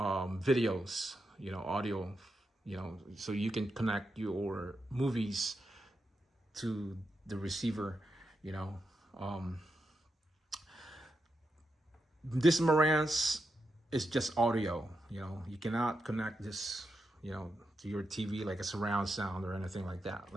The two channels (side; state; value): both; normal; correlation 0.86